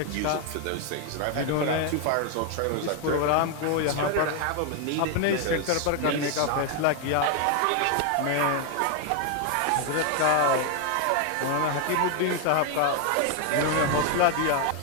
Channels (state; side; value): different; both; correlation 0.01